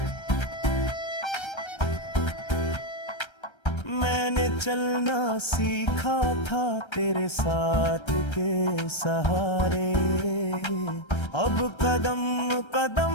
मैंने चलना सीखा था तेरे साथ के सहारे, अब कदम कदम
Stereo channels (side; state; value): right; late; 1.3 ms